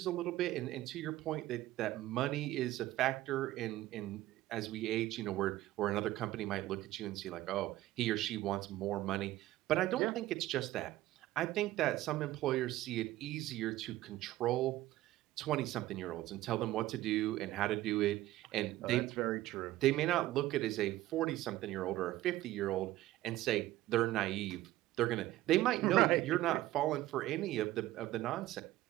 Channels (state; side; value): quieter; left; 15.9 dB